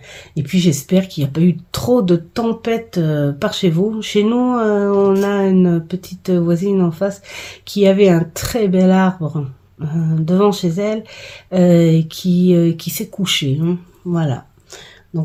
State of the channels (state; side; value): identical; both; correlation 1.00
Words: Et puis, j'espère qu'il n'y a pas eu trop de tempêtes par chez vous. Chez nous, on a une petite voisine en face qui avait un très bel arbre devant chez elle qui s'est couché. Hein, voilà.